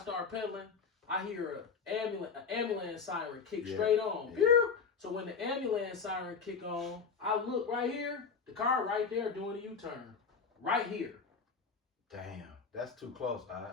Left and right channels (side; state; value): right; quieter; 5.5 dB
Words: pedaling. I hear an ambulance siren kick straight on. Yeah. So when the ambulance siren kick on, I look right here. The car right there doing a U-turn. Right here. Damn. That's too close,